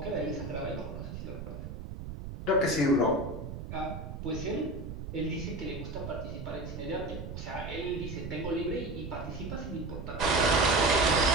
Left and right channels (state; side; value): noise; right; rumble, 8 dB below the sound